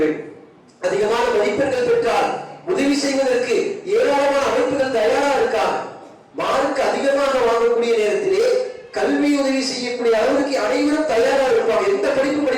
வேண்டும். அதிகமான மதிப்பெண்கள் பெற்றால் உதவி செய்வதற்கு ஏராளமான அமைப்புகள் தயாரா இருக்காங்க. மார்க் அதிகமாக வாங்கக்கூடிய நேரத்திலே கல்வி உதவி செய்யக்கூடிய அளவுக்கு அனைவரும் தயாராக இருப்பாங்க. எந்த படிப்பு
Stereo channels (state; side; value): identical; both; correlation 1.00